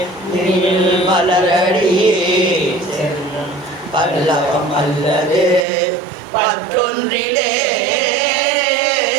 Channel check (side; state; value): left; drops out; at 5.7 s